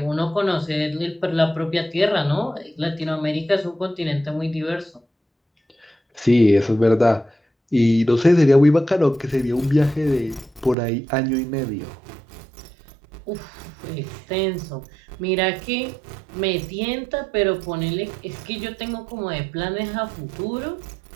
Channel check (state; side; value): drops out; left; at 10.8 s